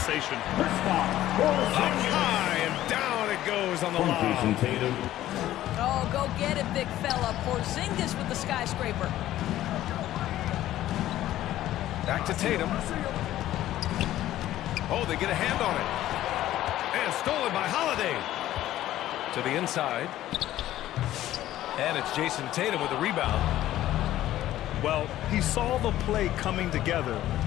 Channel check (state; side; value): quieter; right; 13.8 dB